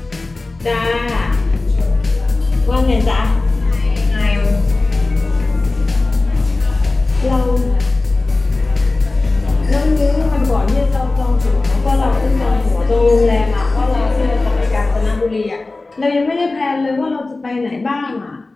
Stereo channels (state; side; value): quieter; right; 3.3 dB